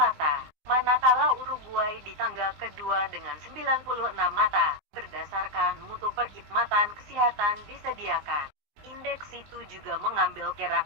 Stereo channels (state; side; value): late; left; 19 ms